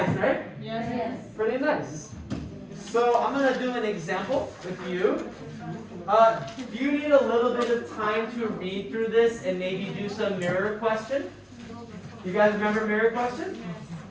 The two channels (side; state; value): both; identical; correlation 1.00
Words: right? Yes. Pretty nice. So I'm going to do an example with you. You need a little bit of time to read through this and maybe do some mirror question. You guys remember mirror question?